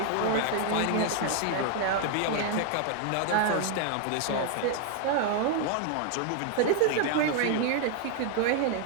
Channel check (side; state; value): both; different; correlation 0.00